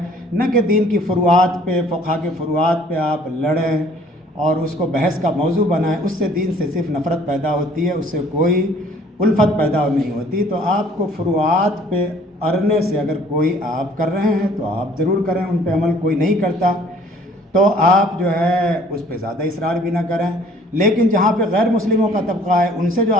نہ کہ دین کی فروعات پہ، فقہ کے فروعات پہ آپ لڑیں اور اس کو بحث کا موضوع بنائیں۔ اس سے دین سے صرف نفرت پیدا ہوتی ہے، اس سے کوئی الفت پیدا نہیں ہوتی۔ تو آپ کو فروعات پہ اڑنے سے اگر کوئی آپ کر رہے ہیں تو آپ ضرور کریں، ان پہ عمل کوئی نہیں کرتا تو آپ جو ہے اس پہ زیادہ اصرار بھی نہ کریں۔ لیکن جہاں پہ غیر مسلموں کا طبقہ ہے، ان سے جو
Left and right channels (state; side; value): normal; both; correlation 0.56